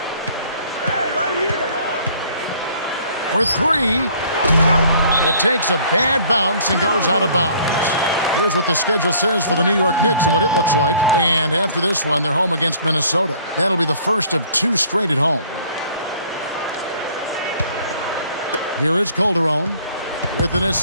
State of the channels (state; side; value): inverted; both; correlation -0.56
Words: For 3. It takes a bad bounce and goes out of bounds. Here's what the schedule says for the New York Knicks and what it looks like. And after this one, they're home against Minnesota. That'll be the first of 2 straight at home. Here is Calderon. With an